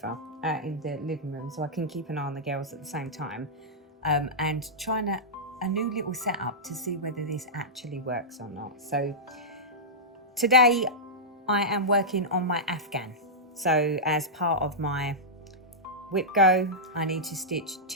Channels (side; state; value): both; normal; correlation -0.12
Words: in the living room, so I can keep an eye on the girls at the same time, and trying a new little setup to see whether this actually works or not. So today I am working on my Afghan. So as part of my whip go, I need to stitch